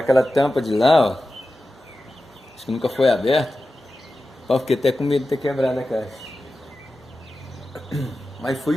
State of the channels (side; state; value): both; normal; correlation 0.93